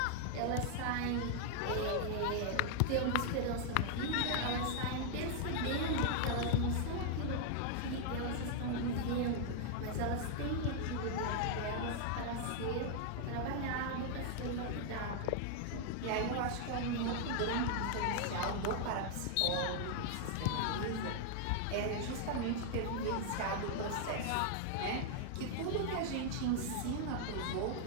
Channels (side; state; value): both; different; correlation 0.00